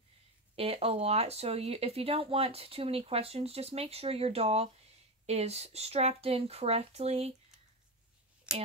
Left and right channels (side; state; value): both; normal; correlation 0.16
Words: it a lot. So if you don't want too many questions, just make sure your doll is strapped in correctly